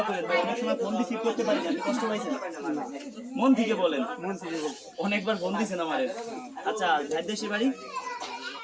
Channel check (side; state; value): both; identical; correlation 1.00